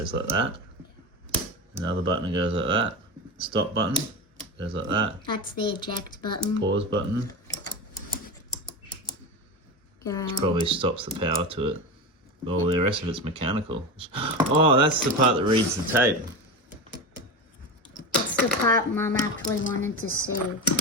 like that. Another button goes like that. Stop button goes like that. That's the eject button. Pause button probably stops the power to it. Well, the rest of it's mechanical. Oh, that's the part that reads the tape. That's the part Mum actually wanted to see.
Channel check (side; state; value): both; normal; correlation 0.22